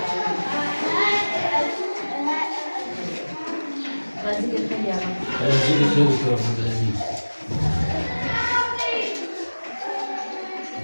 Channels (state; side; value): inverted; both; correlation -1.00